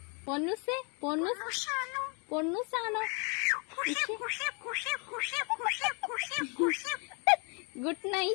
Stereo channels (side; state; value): right; quieter; 35.5 dB